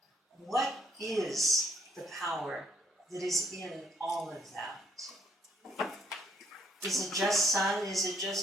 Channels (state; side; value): normal; both; correlation 0.69